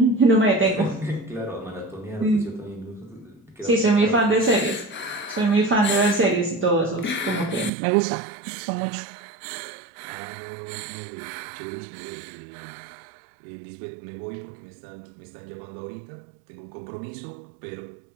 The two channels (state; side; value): drops out; left; at 7.7 s